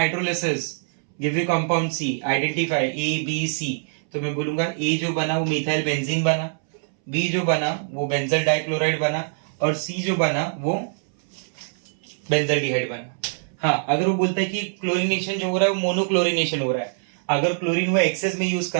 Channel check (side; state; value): left; silent; 63 dB below the other